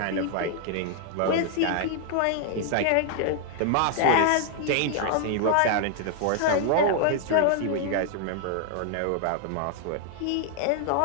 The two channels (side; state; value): both; different; correlation 0.00